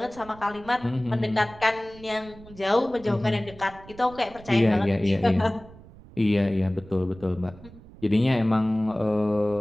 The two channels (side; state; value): right; noise; rumble, 20 dB below the sound